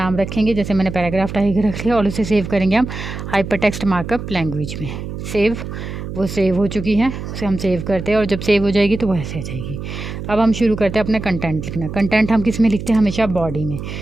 रखेंगे, जैसे मैंने पैराग्राफ टाइप रख लिया, और उसे सेव करेंगे हम हाइपरटेक्स्ट मार्कअप लैंग्वेज में। सेव, वो सेव हो चुकी है, उसे हम सेव करते हैं, और जब सेव हो जाएगी तो वो ऐसे आ जाएगी। अब हम शुरू करते हैं अपना कंटेंट लिखना। कंटेंट हम किस में लिखते हैं, हमेशा बॉडी में।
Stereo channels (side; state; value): right; noise; hum, 8 dB below the sound